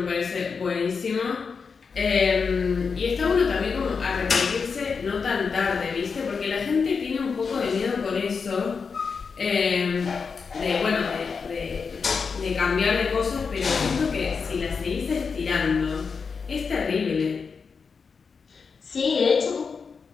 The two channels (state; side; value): quieter; right; 5.4 dB